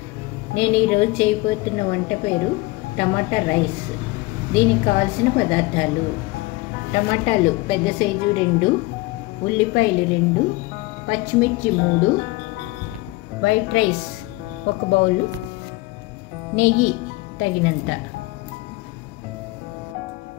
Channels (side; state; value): right; quieter; 21.1 dB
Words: నేను ఈరోజు చేయబోతున్న వంట పేరు టమాటా రైస్. దీనికి కావాల్సిన పదార్థాలు: టమాటాలు పెద్ద సైజు 2, ఉల్లిపాయలు 2, పచ్చిమిర్చి 3, వైట్ రైస్ 1 బౌలు, నెయ్యి తగినంత.